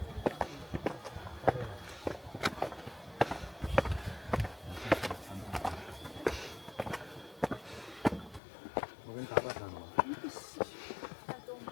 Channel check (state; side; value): drops out; right; at 8.4 s